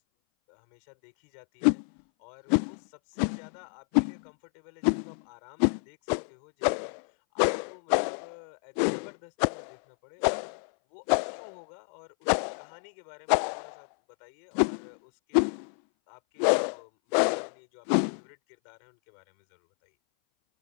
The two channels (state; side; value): silent; right; 59 dB below the other